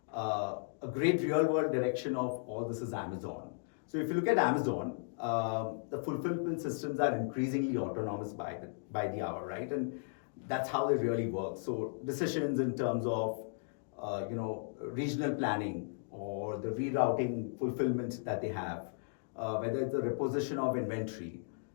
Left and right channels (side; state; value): right; silent; digital silence